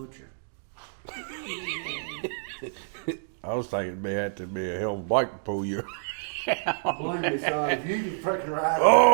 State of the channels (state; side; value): silent; left; digital silence